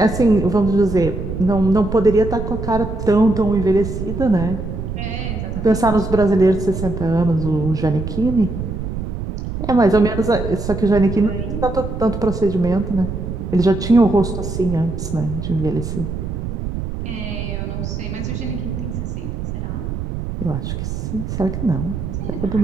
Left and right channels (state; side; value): noise; right; rumble, 5 dB below the sound